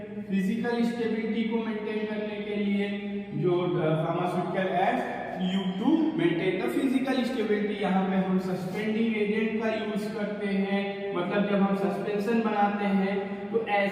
फिजिकल स्टेबिलिटी को मेंटेन करने के लिए जो pharmaceutical aids you to maintain the physical stability, यहाँ पे हम सस्पेंडिंग एजेंट का यूज करते हैं। मतलब जब हम सस्पेंशन बनाते हैं तो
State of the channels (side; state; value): both; identical; correlation 1.00